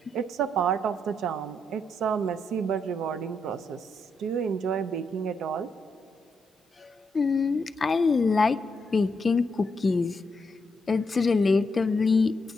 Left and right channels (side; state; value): both; normal; correlation 0.80